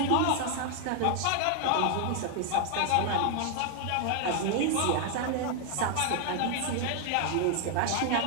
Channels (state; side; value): different; both; correlation 0.00